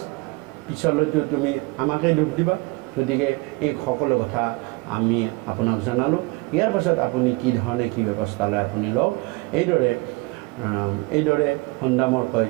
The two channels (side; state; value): left; quieter; 24.7 dB